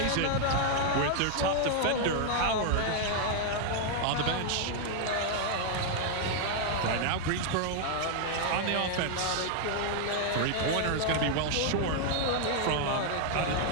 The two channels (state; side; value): different; both; correlation 0.00